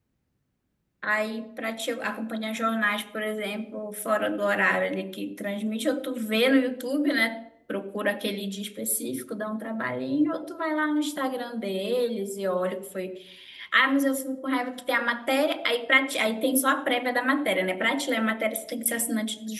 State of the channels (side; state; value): both; identical; correlation 1.00